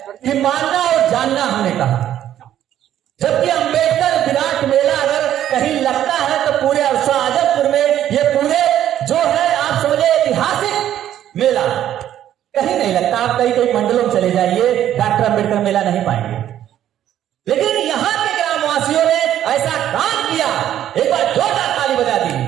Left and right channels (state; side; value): quieter; left; 11.4 dB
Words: कि मानना और जानना हमने कहा, जबकि अम्बेडकर विराट मेला अगर कहीं लगता है तो पूरे अरसा आजमपुर में, ये पूरे जो है आप समझे ऐतिहासिक मेला कहीं नहीं लगता। आप कई मंडलों में चले जाइए, डॉक्टर अम्बेडकर मेला नहीं पाएंगे। लेकिन यहां के ग्रामवासियों ने ऐसा काम किया, एक बार जोरदार ताली बजा दी।